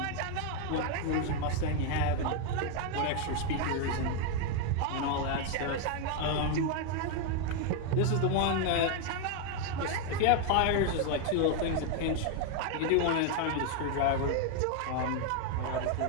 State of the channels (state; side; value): different; both; correlation 0.01